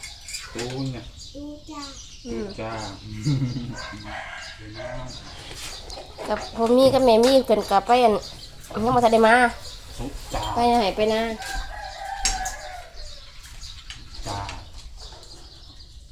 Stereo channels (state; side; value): identical; both; correlation 1.00